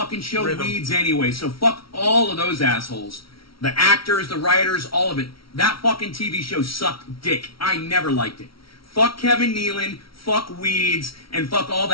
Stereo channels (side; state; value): right; late; 0.75 ms